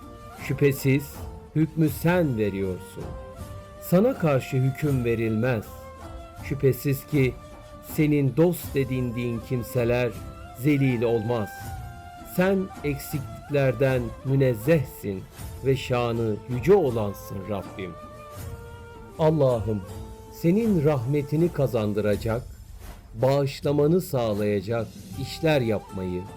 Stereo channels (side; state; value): both; identical; correlation 1.00